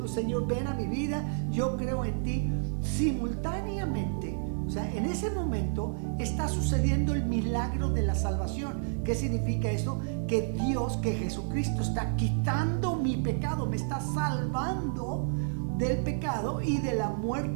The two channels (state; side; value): silent; left; 58 dB below the other